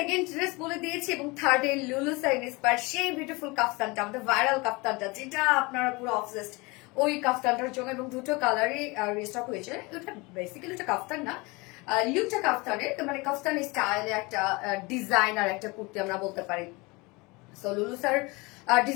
ড্রেস বলে দিয়েছি এবং থার্ড এ লুলু সাইনিস পার সেই বিউটিফুল কাফতানটা, আমাদের ভাইরাল কাফতানটা, যেটা আপনারা পুরো অবসেসড ওই কাফতানটার জন্য, এবং দুটো কালারই রিস্টক হয়েছে। ওটা বেসিক্যালি ওটা কাফতান না, লুকটা কাফতানের, মানে কাফতান স্টাইলে একটা ডিজাইনার একটা কুর্তি আমরা বলতে পারি। সো লুলু স্যার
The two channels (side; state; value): right; quieter; 25.4 dB